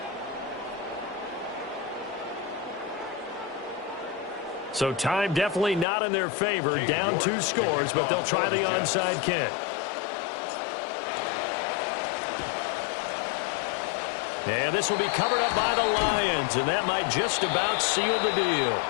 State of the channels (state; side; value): drops out; right; at 5.9 s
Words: So time definitely not in their favor. Down 2 scores, but they'll try the onside kick. And this will be covered up by the Lions, and that might just about seal the deal.